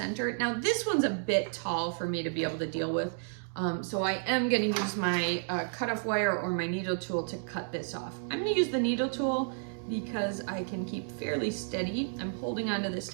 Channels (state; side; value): silent; left; digital silence